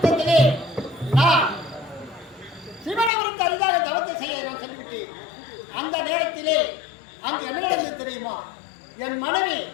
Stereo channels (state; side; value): drops out; right; at 3.1 s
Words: நான் சிவனை குறித்து அரிதாக தவத்தை செய்ய நான் சொல்லிவிட்டேன். அந்த நேரத்திலே அங்கு என்ன நடந்தது தெரியுமா? என் மனைவி